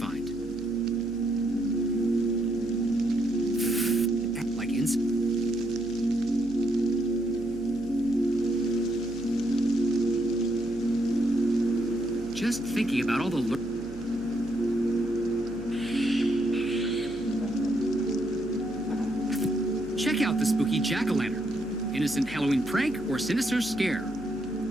Like incense? Just thinking about all the Check out the spooky jack-o'-lantern. Innocent Halloween prank or sinister scare?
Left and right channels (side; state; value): right; noise; hum, 17 dB below the sound